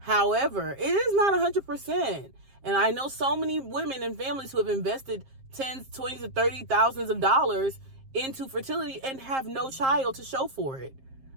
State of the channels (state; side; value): late; left; 7.5 ms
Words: it is not 100%. And I know so many women and families who have invested tens, 20s, to 30 thousands of dollars into fertility and have no child to show for it.